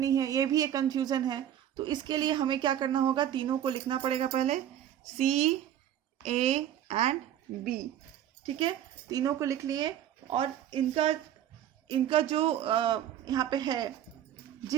है ये भी एक कंफ्यूजन है, तो इसके लिए हमें क्या करना होगा, तीनों को लिखना पड़ेगा पहले, C, A एंड B, ठीक है, तीनों को लिख लिए। और इनका जो यहाँ पे है,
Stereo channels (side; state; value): left; quieter; 11.0 dB